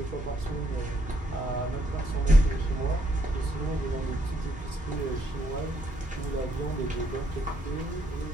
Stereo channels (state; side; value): normal; both; correlation 0.73